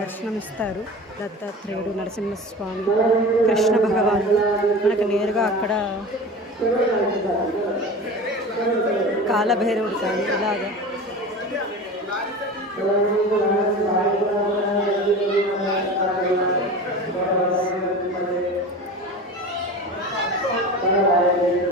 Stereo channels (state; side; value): normal; both; correlation 0.33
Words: దత్తాత్రేయుడు, నరసింహస్వామి, కృష్ణ భగవాను మనకు నేరుగా అక్కడ కాలభైరవుడు కానీ ఇలాగా